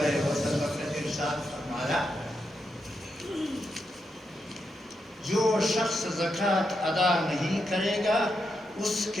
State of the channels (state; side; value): normal; both; correlation 0.84